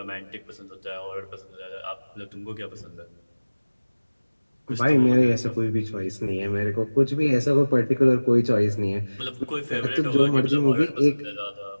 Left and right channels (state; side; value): inverted; both; correlation -1.00